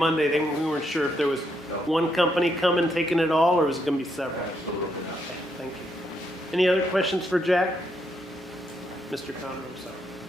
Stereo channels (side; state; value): both; normal; correlation 0.77